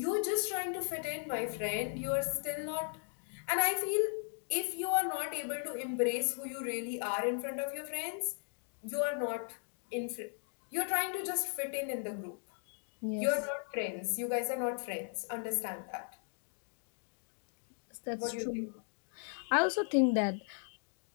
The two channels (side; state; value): right; silent; 53 dB below the other